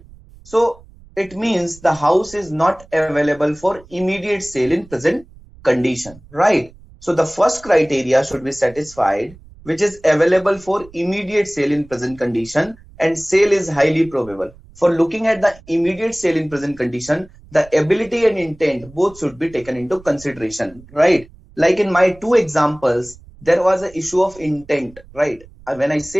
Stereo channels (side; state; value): right; noise; rumble, 23 dB below the sound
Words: So it means the house is not available for immediate sale in present condition, right? So the first criteria should be satisfied, which is available for immediate sale in present condition and sale is highly probable. For looking at the immediate sale in present condition, the ability and intent both should be taken into consideration, right? Like in my two examples, there was an issue of intent, right? When I